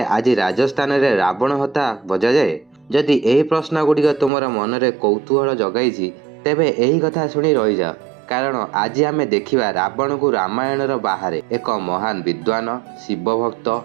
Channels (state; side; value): drops out; left; at 4.3 s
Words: राजस्थान रे रावण हता बजा जाए। जदि एही प्रश्न गुड़िक तुमर मनरे कौतूहल जगाई तेबे एही कथा शुणी रही जाओ, कारण आज आमे देखिबा रावण को रामायणर बाहर एक महान विद्वान शिव